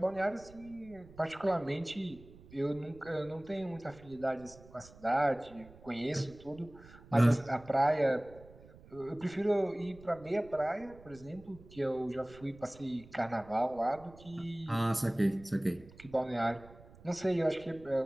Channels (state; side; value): noise; right; rumble, 21 dB below the sound